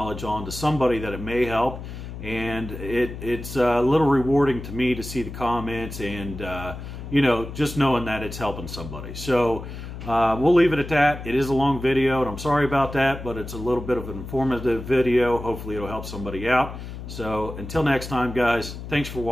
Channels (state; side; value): noise; left; hum, 10 dB below the sound